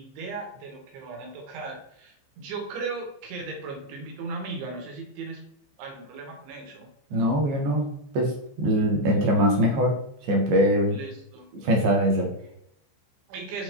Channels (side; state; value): left; late; 14 ms